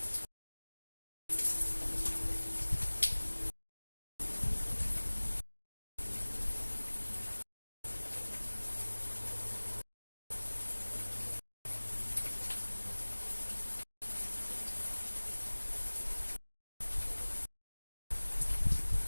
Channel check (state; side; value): inverted; both; correlation -1.00